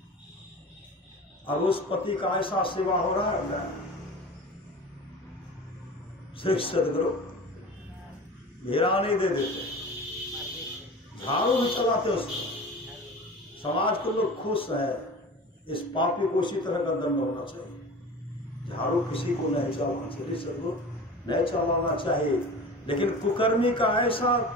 अब उस पति का ऐसा सेवा हो रहा है, श्री सदगुरु घेरा नहीं दे देते, झाड़ू भी चलाते उसको, समाज के लोग खुश है, इस पापी को इसी तरह का दंड होना चाहिए, झाड़ू किसी को नहीं चलाना चाहिए, सदगुरु नहीं चलाना चाहिए। लेकिन कुकर्मी का ऐसा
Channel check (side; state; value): both; normal; correlation 0.36